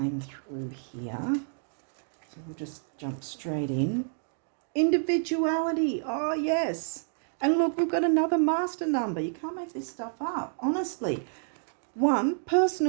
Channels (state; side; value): silent; left; digital silence